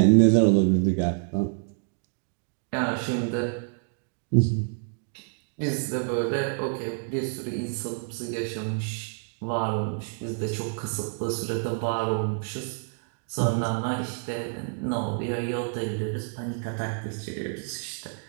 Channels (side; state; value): left; silent; 60 dB below the other